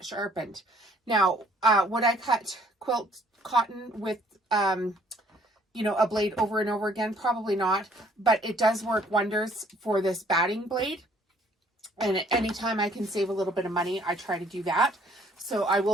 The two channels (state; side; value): normal; both; correlation 0.61